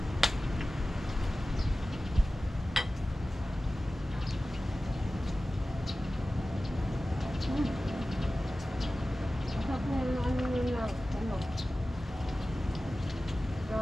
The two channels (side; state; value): both; normal; correlation 0.96